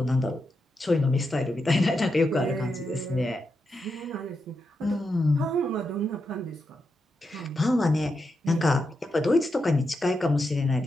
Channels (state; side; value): normal; both; correlation 0.86